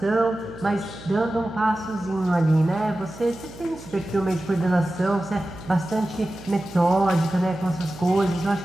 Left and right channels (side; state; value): right; noise; hum, 17 dB below the sound